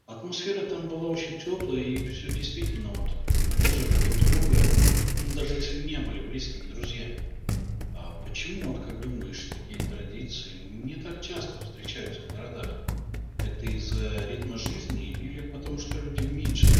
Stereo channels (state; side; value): identical; both; correlation 1.00